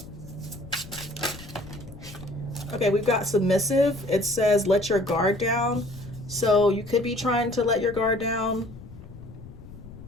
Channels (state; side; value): noise; left; rumble, 16 dB below the sound